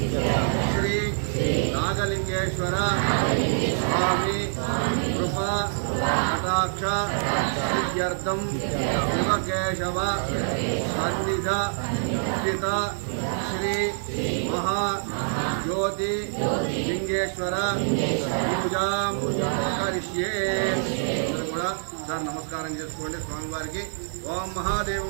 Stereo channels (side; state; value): left; silent; digital silence